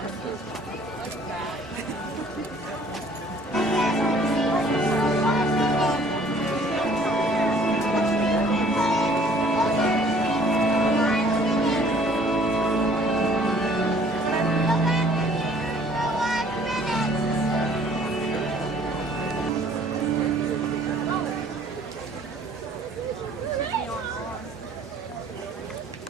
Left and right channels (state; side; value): normal; both; correlation 0.56